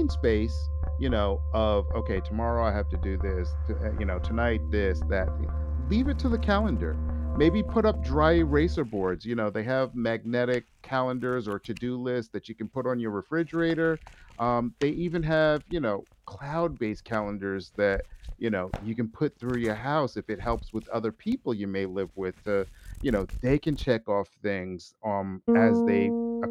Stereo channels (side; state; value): both; identical; correlation 1.00